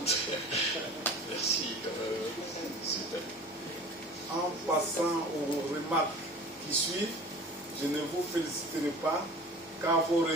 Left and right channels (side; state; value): both; normal; correlation 0.41